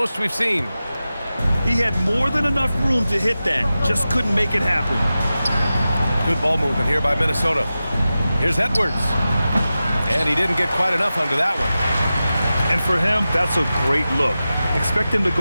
we've seen. He had more than enough room to hit that. Just couldn't make it happen. Good ball movement here by Minnesota. Here's Edwards. And he didn't get quite enough under that one. And for him, that's a great look. Expect him to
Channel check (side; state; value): both; inverted; correlation -0.94